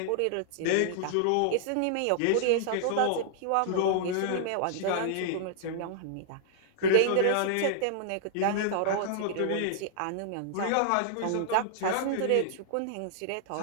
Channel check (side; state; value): both; different; correlation -0.01